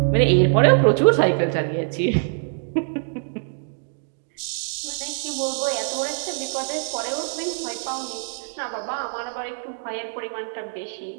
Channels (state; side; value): silent; left; digital silence